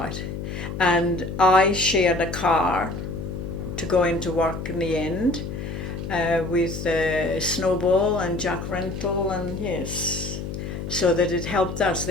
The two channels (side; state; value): left; noise; hum, 6 dB below the sound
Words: And I shared a car to go into work in the end with Snowball and Jack Rental, and yes, so that it helped us.